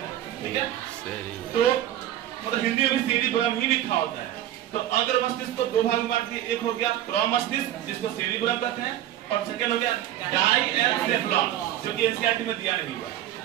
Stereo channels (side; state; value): left; quieter; 12.5 dB